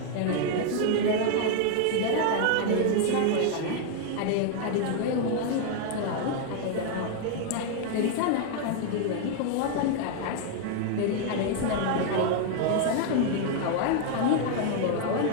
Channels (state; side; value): different; both; correlation 0.00